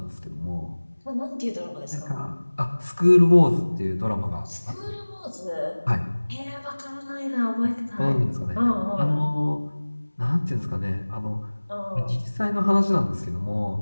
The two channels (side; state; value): both; inverted; correlation -1.00